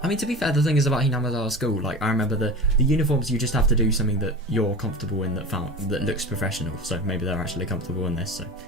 I mean, to be fair, the thing is about Hinamizawa school, like, I remember the uniforms, you just have to do something that you're comfortable in that looks professional. So maybe they're actually comfortable in this. So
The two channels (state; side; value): normal; both; correlation 0.32